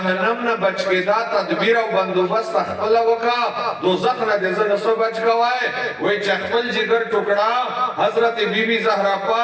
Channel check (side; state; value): both; identical; correlation 1.00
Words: نا بچ کے دا تدبیر و بندوبست اخپلا وکا دوزخ نا دے زنسو بچ کوائے وی چخپل جگر ٹکڑا حضرت بی بی زہرا